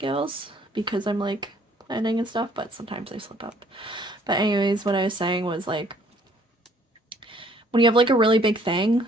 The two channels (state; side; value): normal; both; correlation 0.61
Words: because I'm like planning and stuff, but sometimes I slip up. But anyways, what I was saying was like, when you have like a really big thing